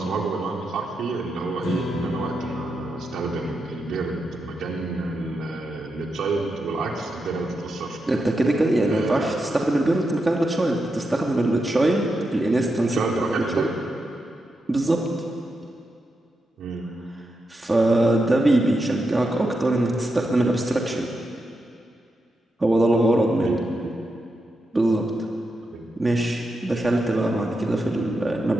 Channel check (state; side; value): normal; both; correlation 0.86